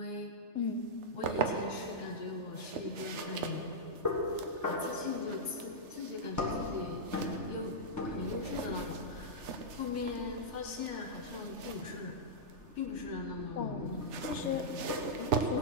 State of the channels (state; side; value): late; left; 3.3 ms